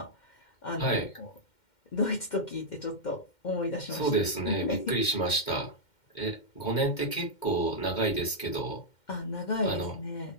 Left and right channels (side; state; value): right; late; 2.1 ms